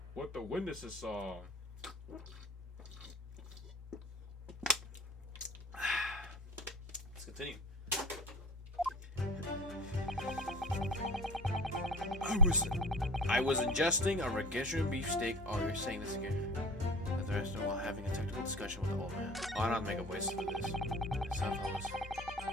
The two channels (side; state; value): both; normal; correlation 0.39